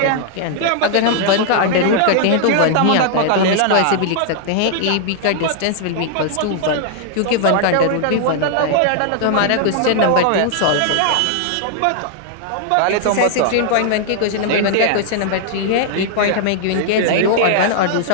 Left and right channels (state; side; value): different; both; correlation -0.01